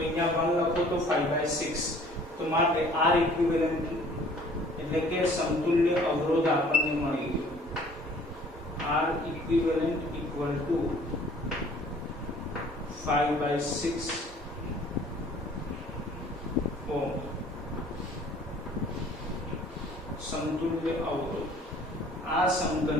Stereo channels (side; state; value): both; normal; correlation 0.53